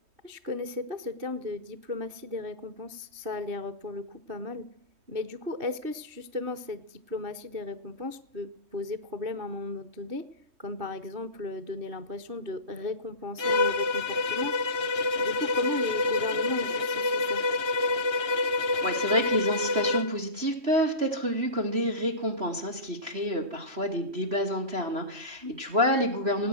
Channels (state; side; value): late; left; 3.2 ms